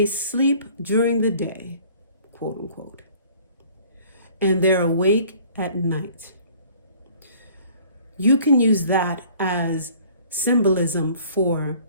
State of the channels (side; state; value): both; inverted; correlation -0.53